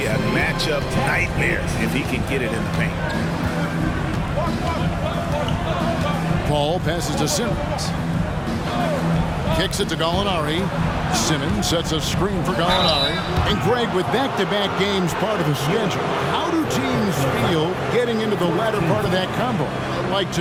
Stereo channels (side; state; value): both; identical; correlation 1.00